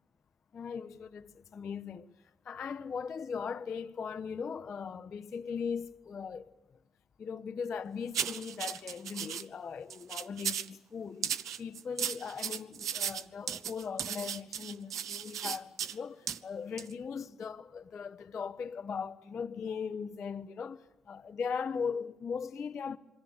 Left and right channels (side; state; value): both; normal; correlation 0.67